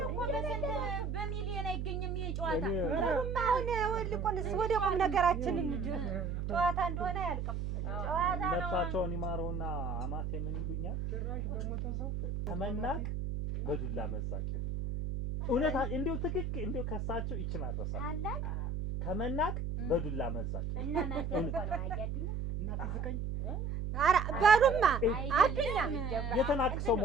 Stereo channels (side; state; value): right; noise; hum, 2 dB below the sound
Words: በሚሊዮን አይገኝም ይሄ ጨዋታ። አሁን ወልቆንስ ወደ ቁም ነገራችን እንጂ ጨዋታ እንደሆነ አያልቅም። ጨዋታ ነው። ነፍሳቸውን ይማረውና አማቴ ምን ይሉኛል? ጭራሽ በሞተ ሰው ከመናቅ በዱላ መዛቅ ይሉ እውነት እንደው ትክክል እንደው ከሳቸው ይችን አረሳ ከመናቅ በዱላ መዛቅ እና ማንተ እኮ ነው አያድኛ እና ትዝቀኝ ኧረ በሉማ አድኛ የተናቅ ሰው